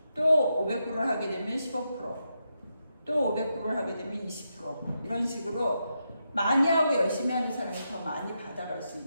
또 500불을 하게 되면 15%, 또 500불을 하게 되면 20%. 이런 식으로 많이 하고 열심히 하는 사람이 더 많이 받아갈 수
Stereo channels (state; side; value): inverted; both; correlation -0.85